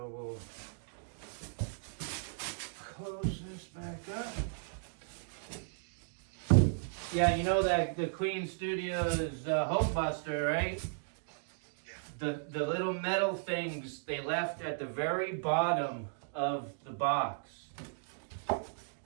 we'll close this back up. Yeah, you know that the Queen Studios Hope Buster, right? The little metal things they left at the very bottom of the box.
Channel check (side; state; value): left; silent; digital silence